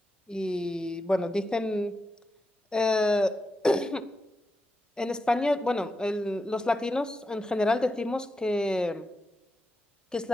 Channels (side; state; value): both; normal; correlation 0.89